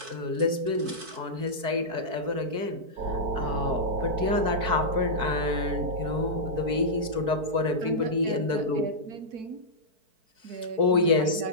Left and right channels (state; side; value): late; left; 4.5 ms